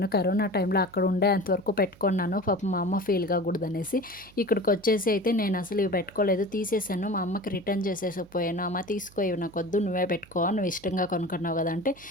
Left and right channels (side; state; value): right; noise; hum, 25 dB below the sound